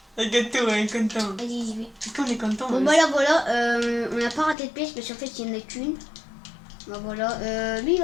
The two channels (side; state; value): right; drops out; at 4.5 s